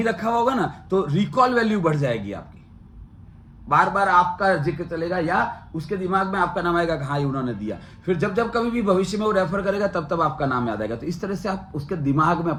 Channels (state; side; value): identical; both; correlation 1.00